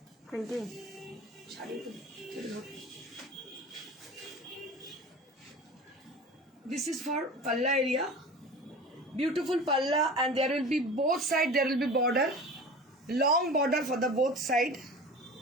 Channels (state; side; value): normal; both; correlation 0.36